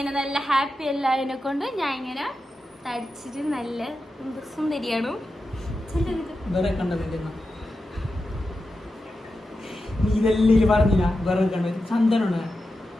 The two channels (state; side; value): normal; both; correlation 0.91